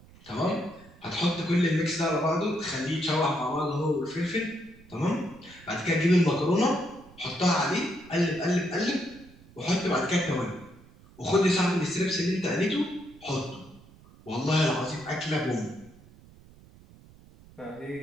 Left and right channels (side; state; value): right; noise; rumble, 23 dB below the sound